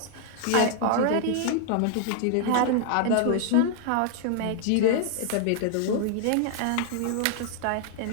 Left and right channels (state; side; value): different; both; correlation 0.00